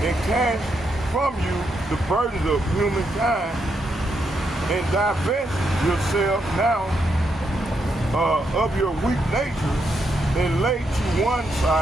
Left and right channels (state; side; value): normal; both; correlation 0.80